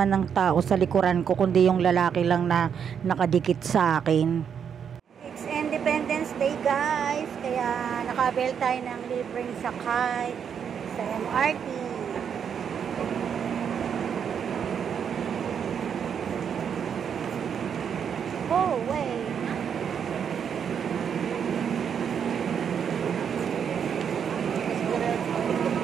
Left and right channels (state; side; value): quieter; left; 7.6 dB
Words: ng tao sa likuran ko, kundi yung lalaki lang na nakadikit sa akin. guys, kaya nakabil tayo ng libreng sakay sa MRT. Oh, wait.